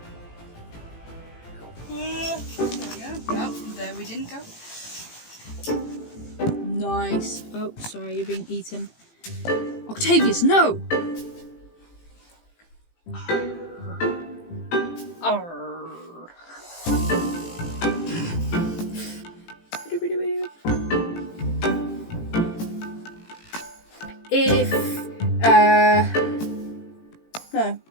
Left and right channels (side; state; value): right; late; 18 ms